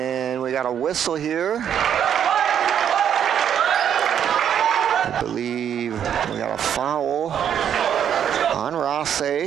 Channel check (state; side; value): quieter; left; 9.0 dB